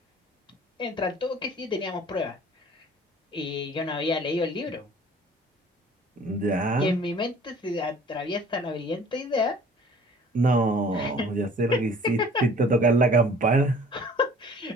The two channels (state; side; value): normal; both; correlation 0.50